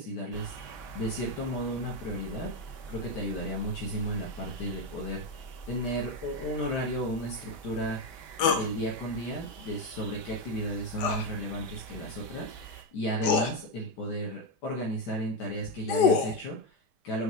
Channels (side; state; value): right; late; 5.0 ms